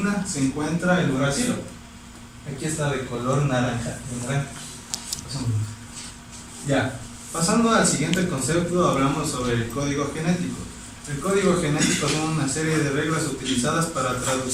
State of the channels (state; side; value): identical; both; correlation 1.00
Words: se encuentra el uracilo. Aquí está de color naranja. Ya. Pasando al siguiente concepto, hablamos sobre el código genético. El código genético son una serie de reglas utilizadas para